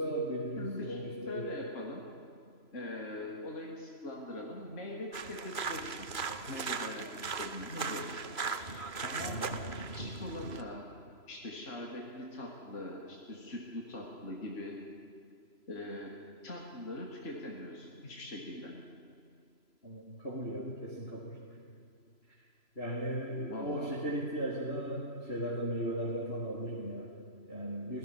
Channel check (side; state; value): right; late; 3.0 ms